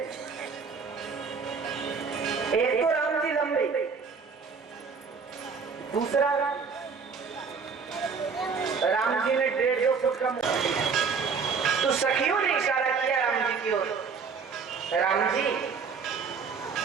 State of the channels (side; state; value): left; quieter; 5.4 dB